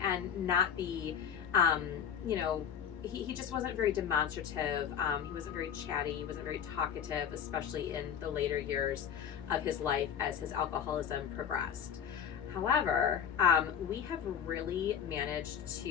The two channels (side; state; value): right; quieter; 8.0 dB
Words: and not be, he just wasn't very demonstrative. He wasn't very chatty. He wasn't very talkative, especially in the later years of his life as his alcoholism progressed. However, we have really managed